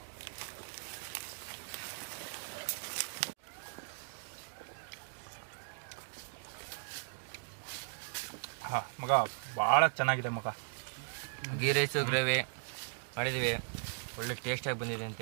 ಮಗ ಭಾಳ ಚೆನ್ನಾಗಿದೆ ಮಗ. ಗೀ ರೈಸು ಗ್ರೇವಿ ಮಾಡಿದ್ದೀವಿ, ಒಳ್ಳೆ ಟೇಸ್ಟಾಗಿ ಬಂದಿದೆ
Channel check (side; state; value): left; silent; digital silence